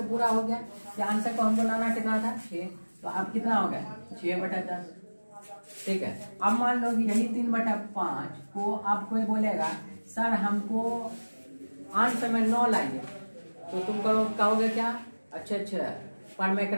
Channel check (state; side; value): inverted; both; correlation -1.00